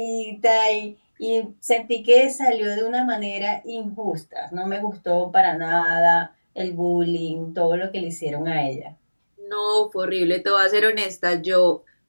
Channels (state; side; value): inverted; both; correlation -1.00